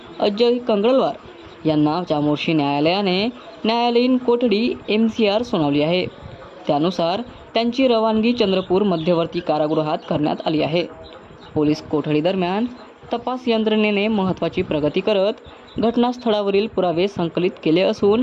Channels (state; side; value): identical; both; correlation 1.00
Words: कंगळवार यांना चामोर्शी न्यायालयाने न्यायालयीन कोठडी MCR सुनावली आहे. त्यानुसार त्यांची रवानगी चंद्रपूर मध्यवर्ती कारागृहात करण्यात आली आहे. पोलीस कोठडीदरम्यान तपास यंत्रणेने महत्त्वाची प्रगती करत घटनास्थळावरील पुरावे संकलित केले